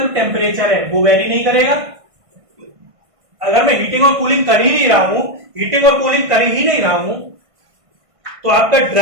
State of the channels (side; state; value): left; late; 1.5 ms